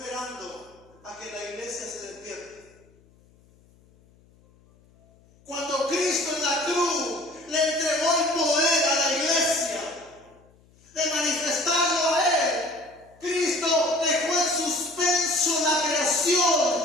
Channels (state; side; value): noise; left; hum, 30 dB below the sound